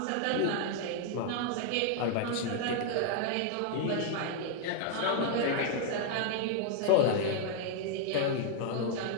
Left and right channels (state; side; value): different; both; correlation 0.00